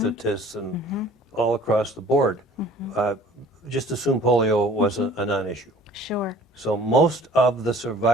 and all across the board, just assume polio was a non-issue. Sure. So most of the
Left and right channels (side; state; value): both; normal; correlation 0.50